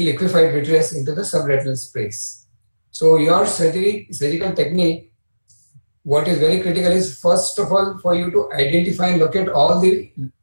liquefied vitreous into the subretinal space. So your surgical technique, what is very critical is, first of all, for you to identify and locate all the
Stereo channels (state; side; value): inverted; both; correlation -1.00